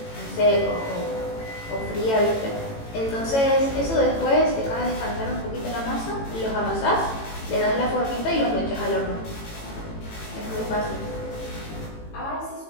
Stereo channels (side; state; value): right; late; 18 ms